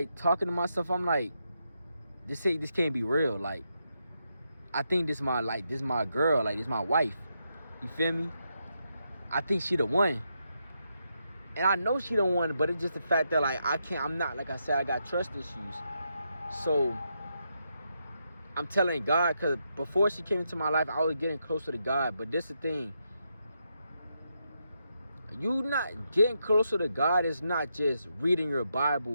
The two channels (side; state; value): both; inverted; correlation -0.82